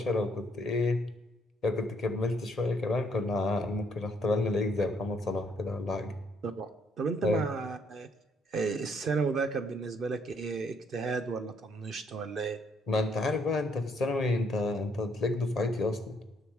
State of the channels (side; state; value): both; normal; correlation 0.69